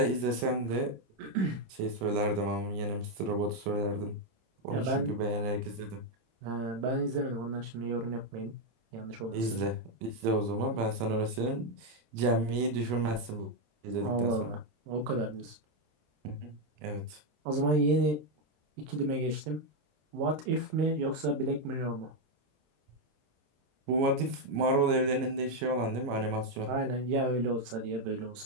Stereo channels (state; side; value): late; left; 26 ms